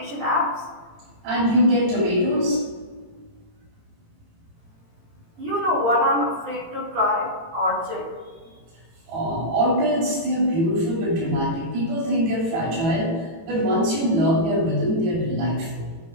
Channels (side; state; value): left; late; 18 ms